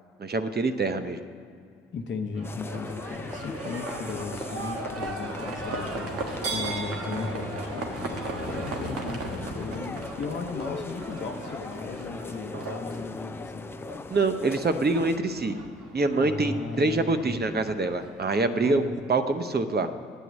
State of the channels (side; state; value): both; normal; correlation 0.52